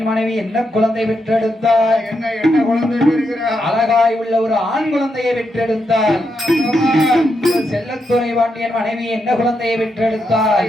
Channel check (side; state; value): both; normal; correlation 0.82